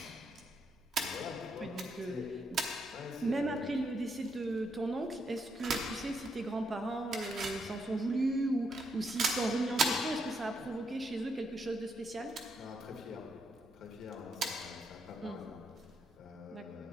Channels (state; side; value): normal; both; correlation 0.78